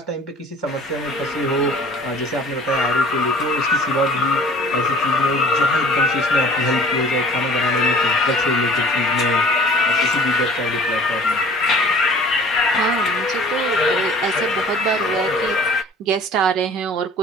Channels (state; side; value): normal; both; correlation 0.48